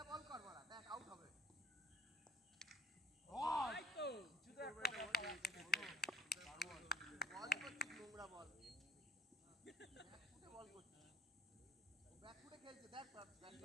বল কর, বড়া দেখ আউট হবে। ওই তো কিছু একটা বল করছিস, নোংরা বল। ব্যাকফুটে বল করছিস, ব্যাকফুটে খেলছে দেখ,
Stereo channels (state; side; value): normal; both; correlation 0.53